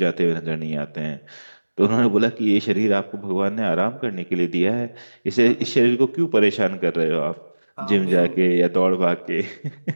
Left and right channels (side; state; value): both; inverted; correlation -1.00